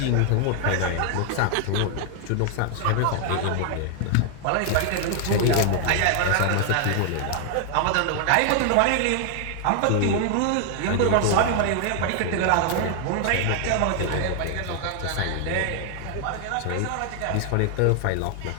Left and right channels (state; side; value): different; both; correlation 0.00